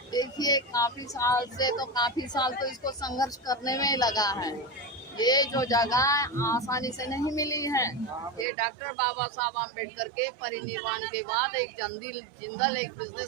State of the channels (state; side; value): drops out; left; at 8.5 s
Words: देखिए काफी साल तो इसको संघर्ष करने में ही लगा है। ये जो जगह आसानी से नहीं मिली है। ये डॉक्टर बाबा साहब आम्बेडकर के परिनिर्वाण के बाद एक जिंदल एक